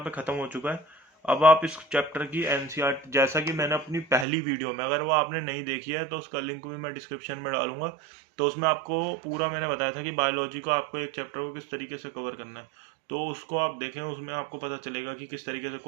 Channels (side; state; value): left; drops out; at 4.2 s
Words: पे खत्म हो चुका है। अब आप इस चैप्टर की एनसीईआरटी, जैसा कि मैंने अपनी पहली वीडियो में, अगर वो आपने नहीं देखी है तो उसका लिंक भी मैं डिस्क्रिप्शन में डालूंगा। तो उसमें आपको पूरा मैंने बताया था कि बायोलॉजी को आपको एक चैप्टर को किस तरीके से कवर करना है। तो उसको आप देखें, उसमें आपको पता चलेगा कि किस तरीके से